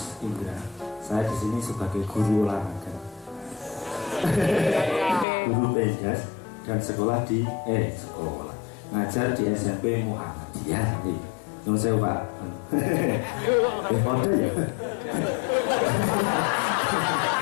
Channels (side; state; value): right; drops out; at 5.2 s